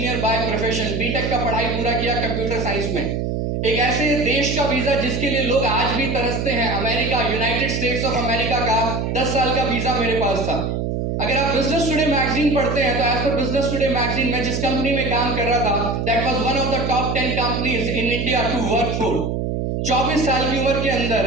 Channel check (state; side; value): noise; right; hum, 1 dB below the sound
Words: by profession. B Tech का पढ़ाई पूरा किया कंप्यूटर साइंस में। एक ऐसे देश का वीजा जिसके लिए लोग आज भी तरसते हैं, America, United states of America का 10 साल का वीजा मेरे पास था। अगर आप बिजनेस टुडे मैगजीन पढ़ते हैं तो as per business today magazine में जिस कंपनी में काम कर रहा था, that was one of the top 10 companies in India to work for. 24 साल की उम्र के